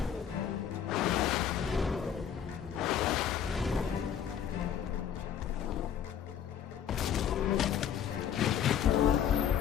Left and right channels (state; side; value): quieter; right; 8.8 dB